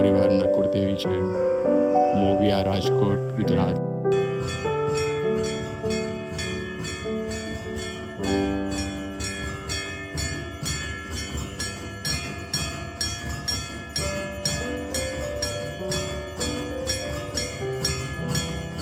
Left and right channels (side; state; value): both; identical; correlation 1.00